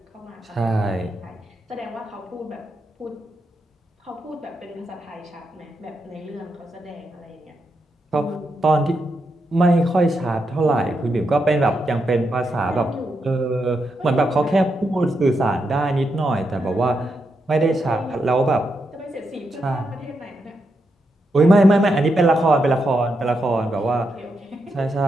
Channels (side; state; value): both; normal; correlation 0.83